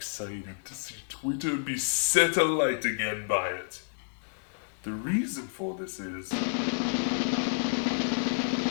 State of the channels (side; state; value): right; silent; 58 dB below the other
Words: to see Twitter be set alight again by it. The reason for this is